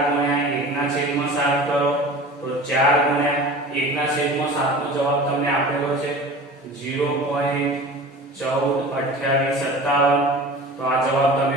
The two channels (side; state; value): both; normal; correlation 0.38